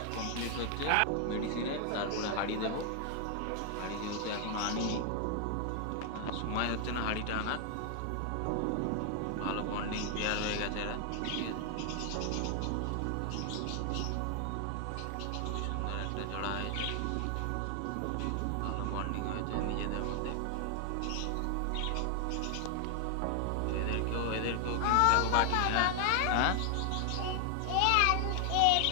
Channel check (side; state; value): both; different; correlation 0.00